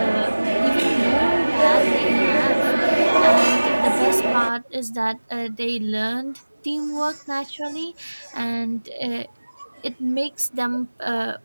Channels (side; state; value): both; inverted; correlation -1.00